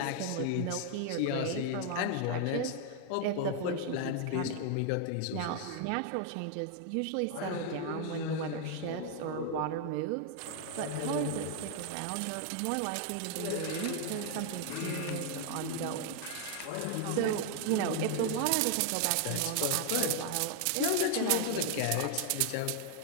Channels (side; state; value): both; different; correlation 0.00